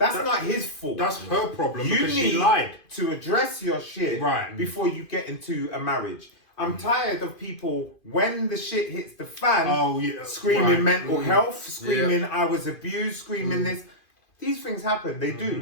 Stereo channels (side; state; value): right; late; 2.5 ms